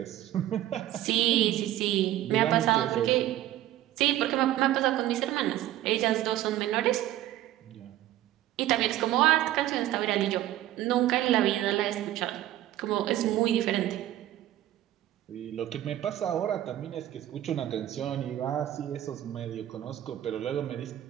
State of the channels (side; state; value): left; quieter; 13.6 dB